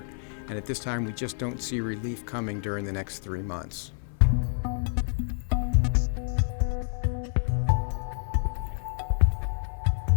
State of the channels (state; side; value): silent; right; 56 dB below the other